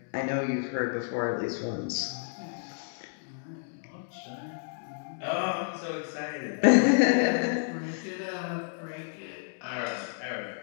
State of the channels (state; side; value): silent; right; digital silence